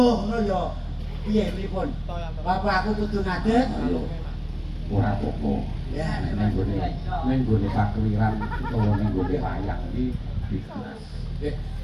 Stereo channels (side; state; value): both; identical; correlation 1.00